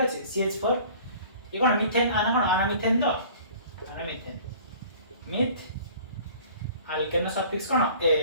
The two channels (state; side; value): inverted; both; correlation -0.48